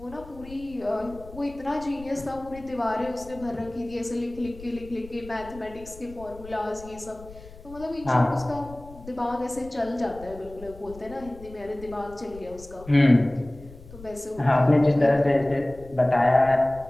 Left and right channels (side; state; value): left; noise; rumble, 18 dB below the sound